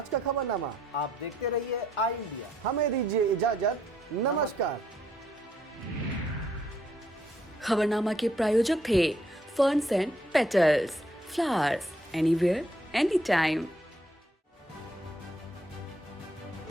का खबरनामा। आप देखते रहिए आई इंडिया। हमें दीजिए इजाजत। नमस्कार। खबरनामा के प्रायोजक थे ferns and petals, flowers anywhere any time.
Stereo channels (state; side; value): normal; both; correlation 0.71